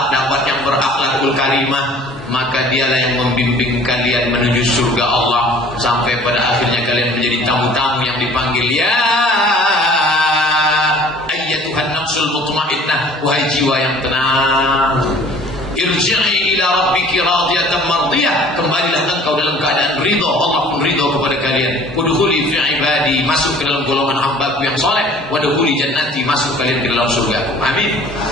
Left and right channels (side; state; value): both; normal; correlation 0.50